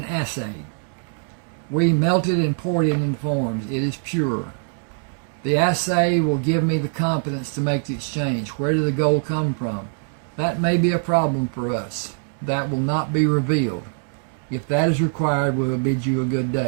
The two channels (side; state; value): left; silent; 64 dB below the other